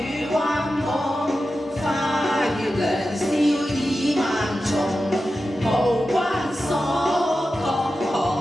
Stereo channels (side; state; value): both; normal; correlation 0.92